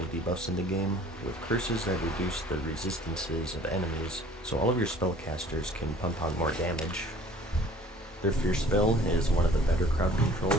debuffs in the game, with curses that reduce the resistances of enemies, so all of your spellcasters can pump out more damage. Their Fierce spell is one of the better crowd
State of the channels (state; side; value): normal; both; correlation 0.52